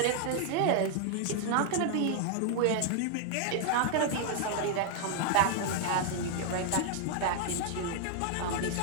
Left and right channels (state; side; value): different; both; correlation 0.00